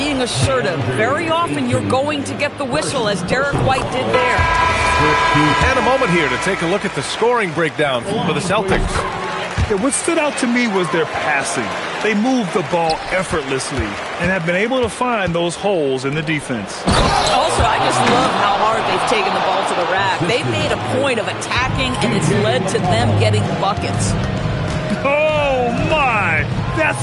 assertive, very often you're going to get the whistle, as Derek White did there. And a moment here to take a look at the scoring breakdown for the Celtics. Yeah, what stood out to me was their passing. They moved the ball effortlessly and have been able to find those holes in the defense. Also, I just love how hard they've taken the ball to the rack. They've made a point of attacking, and it's led to them getting buckets. Oh, my! That's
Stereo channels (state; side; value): identical; both; correlation 1.00